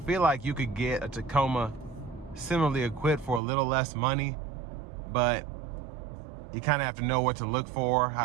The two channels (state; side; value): drops out; left; at 3.4 s